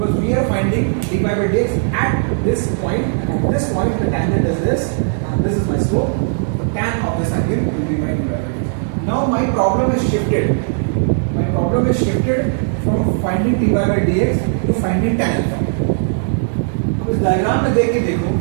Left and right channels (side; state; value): left; silent; 68 dB below the other